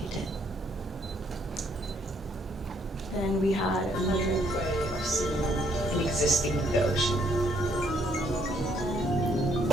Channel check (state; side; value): normal; both; correlation 0.69